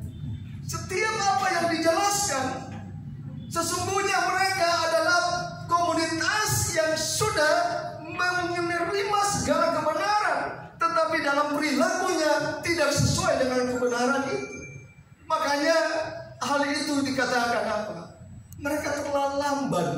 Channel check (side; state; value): both; identical; correlation 1.00